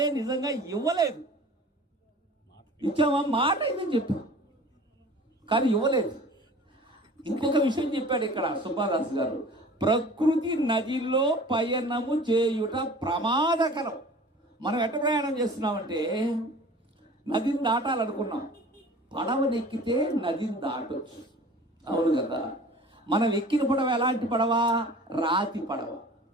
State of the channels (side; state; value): both; normal; correlation 0.44